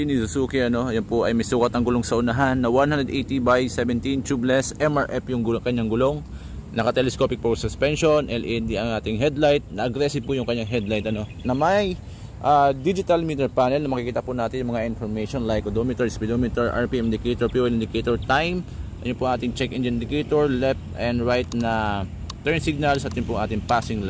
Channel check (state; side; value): identical; both; correlation 1.00